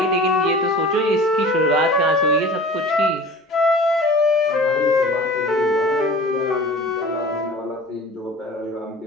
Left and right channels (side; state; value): both; normal; correlation 0.40